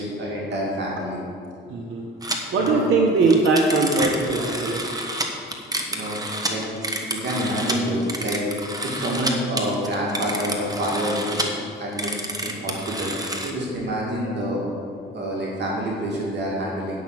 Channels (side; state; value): both; normal; correlation 0.33